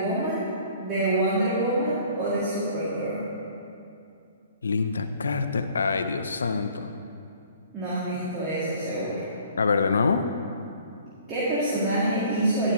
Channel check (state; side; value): inverted; both; correlation -0.54